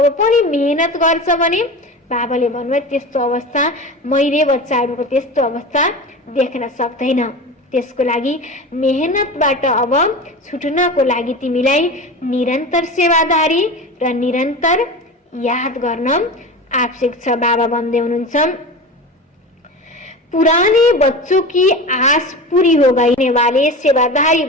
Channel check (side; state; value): both; normal; correlation 0.30